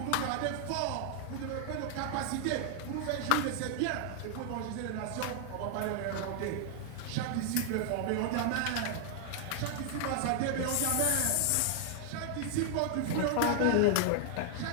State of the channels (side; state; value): both; different; correlation 0.00